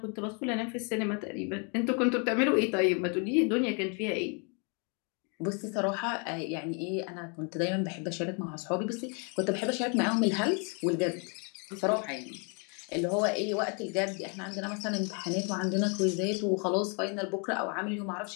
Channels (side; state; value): right; quieter; 36.4 dB